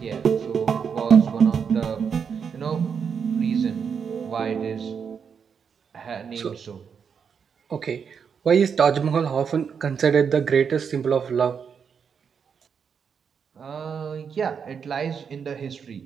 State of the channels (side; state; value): left; quieter; 6.7 dB